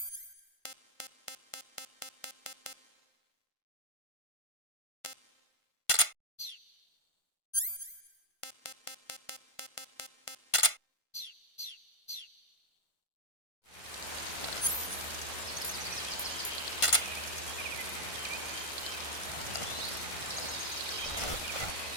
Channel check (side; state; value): right; late; 1.5 ms